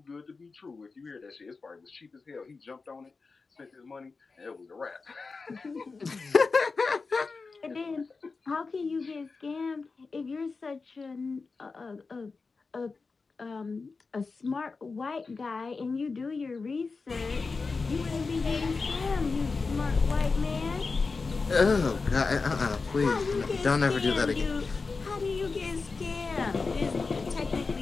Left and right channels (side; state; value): right; quieter; 4.3 dB